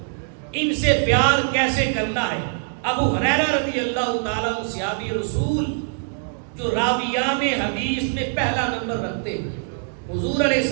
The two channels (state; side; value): silent; left; digital silence